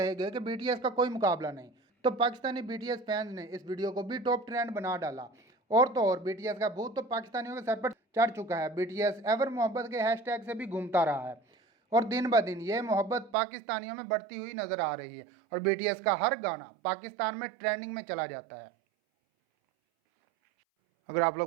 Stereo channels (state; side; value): drops out; left; at 13.4 s